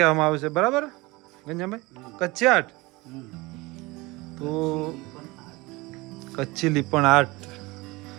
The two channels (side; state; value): left; quieter; 22.7 dB